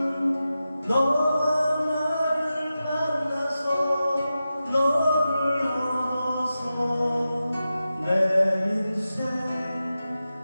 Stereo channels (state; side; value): inverted; both; correlation -0.92